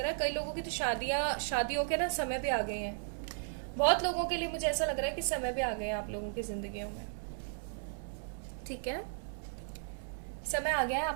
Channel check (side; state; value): left; silent; 54 dB below the other